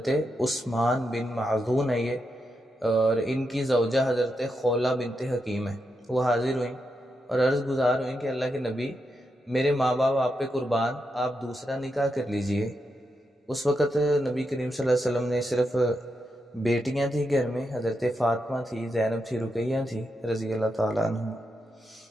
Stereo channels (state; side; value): normal; both; correlation 0.85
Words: عثمان بن معذون ہے یہ، اور ان کی زوجہ حضرت خولہ بنت حکیم ہے، وہ حاضر ہوئیں اور عرض گزار ہوئیں کہ اللہ کے نبی، میرے ماں باپ آپ پہ قربان، آپ دوسرا نکاح کر لیجئے۔ اس وقت نبی کریم صلی اللہ علیہ وسلم نے صرف بیٹیاں تھیں گھر میں، حضرت فاطمہ تھی، زینب تھی، رقیہ تھی رضی اللہ تعالیٰ عنہ،